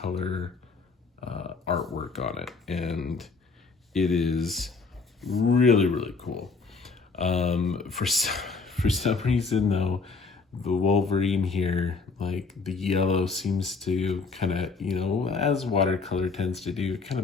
artwork on it, and it is really cool. For some reason though, the Wolverine here, like the yellow seems to kind of, as watercolor tends to do, it kind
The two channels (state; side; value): quieter; right; 4.4 dB